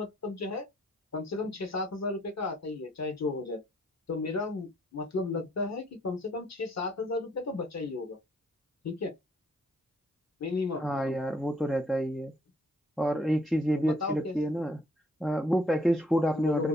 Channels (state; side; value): normal; both; correlation 0.66